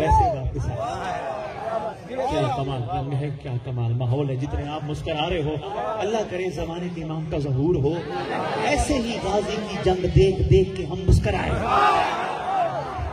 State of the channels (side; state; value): both; identical; correlation 1.00